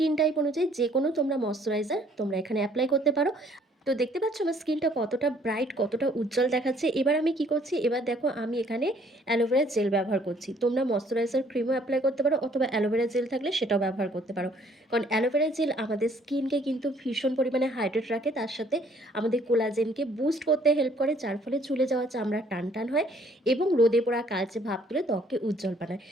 টাইপ অনুযায়ী যেকোনো তোমরা ময়েশ্চারাইজার তোমরা এখানে এপ্লাই করতে পারো। তো দেখতে পাচ্ছ আমার স্কিনটা কতটা ব্রাইট, কতটা উজ্জ্বল দেখাচ্ছে। এবার আমি কি করছি, এবার দেখো আমি এখানে অ্যালোভেরা জেল ব্যবহার করছি। তোমরা ময়েশ্চারাইজার ক্রিমও এপ্লাই করতে পারো অথবা অ্যালোভেরা জেল থাকলে সেটাও ব্যবহার করতে পারো। কারণ অ্যালোভেরা জেল আমাদের স্কিনকে কিন্তু ভীষণ পরিমাণে হাইড্রেট রাখে। তার সাথে আমাদের কোলাজেনকে বুস্ট করতে হেল্প করে, যার ফলে ঝুলে যাওয়া চামড়া টান হয় এবং রোদে পোড়া কালচে ভাব তুলে ত্বককে উজ্জ্বল বানায়।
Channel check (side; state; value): both; normal; correlation 0.61